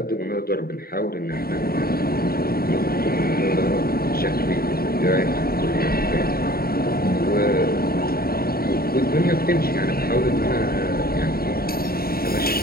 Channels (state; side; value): late; right; 0.44 ms